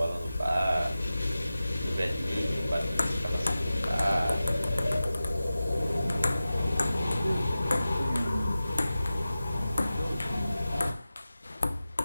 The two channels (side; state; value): both; inverted; correlation -0.94